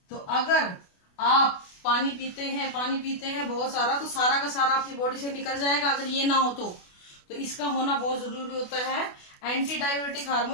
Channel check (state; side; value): late; right; 28 ms